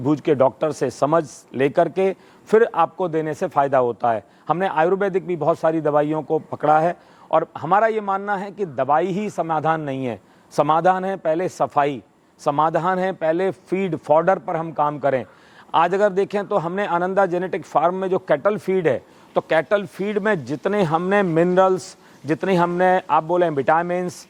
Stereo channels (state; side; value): identical; both; correlation 1.00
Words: के डॉक्टर से समझ लेकर के फिर आपको देने से फ़ायदा होता है। हमने आयुर्वेदिक भी बहुत सारी दवाइयों को पकड़ा है और हमारा ये मानना है कि दवाई ही समाधान नहीं है। समाधान है पहले सफाई, समाधान है पहले फीड फॉडर पर हम काम करें। आज अगर देखें तो हमने आनंदा जेनेटिक फार्म में जो कैटल फीड है, तो कैटल फीड में जितने हमने मिनरल्स, जितने हमने आप बोलें विटामिन्स,